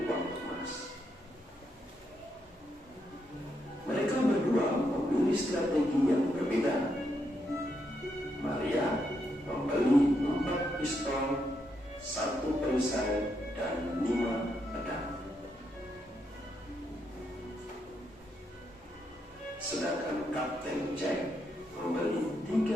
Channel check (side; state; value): both; normal; correlation 0.79